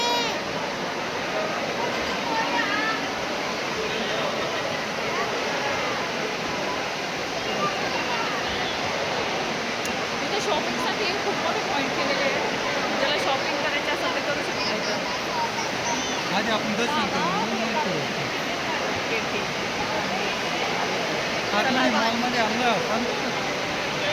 इथे शॉपिंगसाठी खूप मोठे पॉईंट केलेले आहे. ज्याला शॉपिंग करायची असेल तर करू शकतो. आधी आपण दर्शन करू. नाही मॉलमध्ये आणलं आपण.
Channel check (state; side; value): identical; both; correlation 1.00